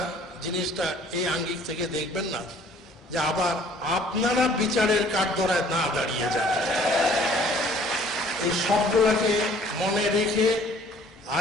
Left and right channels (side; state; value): both; normal; correlation 0.55